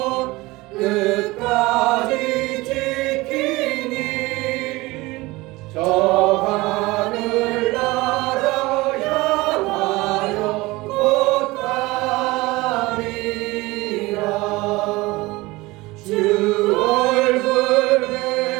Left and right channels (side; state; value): left; quieter; 21.2 dB